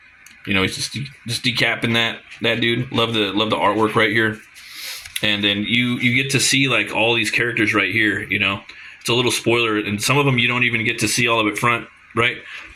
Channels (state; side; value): identical; both; correlation 1.00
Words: He's just decapping that dude. Love the artwork right here. and then you get to see like all these characters right here. You know, it's a little spoiler, and some of them you don't even get to see all of it front, right?